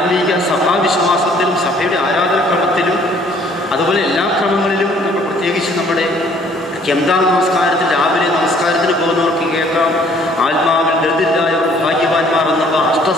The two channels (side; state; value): both; normal; correlation 0.59